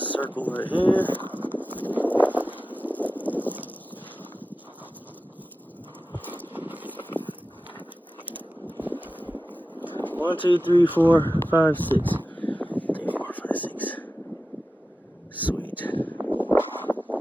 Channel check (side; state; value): both; normal; correlation 0.94